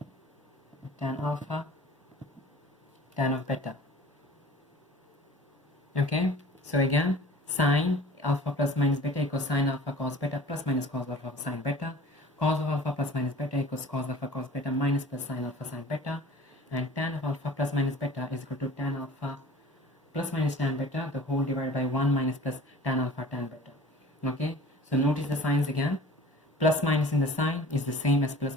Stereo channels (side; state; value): both; normal; correlation 0.44